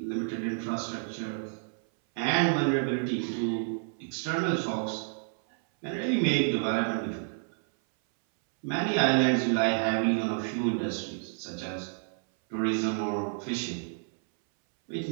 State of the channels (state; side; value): silent; left; 58 dB below the other